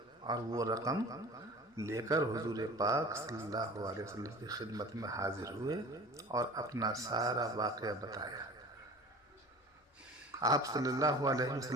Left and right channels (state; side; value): normal; both; correlation 0.41